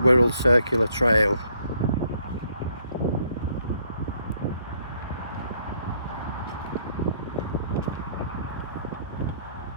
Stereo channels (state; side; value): inverted; both; correlation -0.68